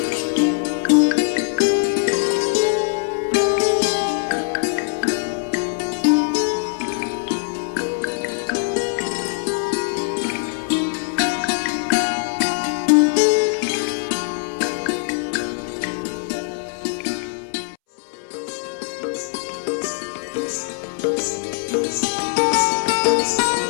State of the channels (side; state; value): right; silent; 65 dB below the other